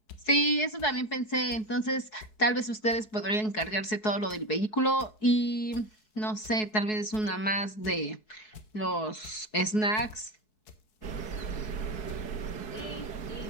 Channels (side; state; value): right; late; 4.7 ms